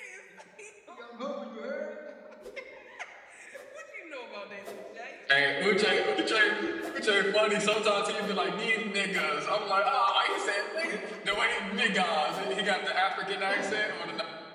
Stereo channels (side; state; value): both; identical; correlation 1.00